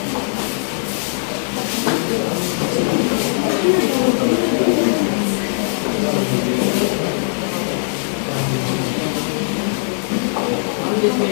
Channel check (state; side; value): silent; right; digital silence